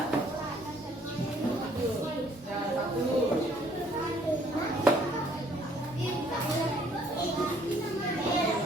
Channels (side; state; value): both; normal; correlation 0.62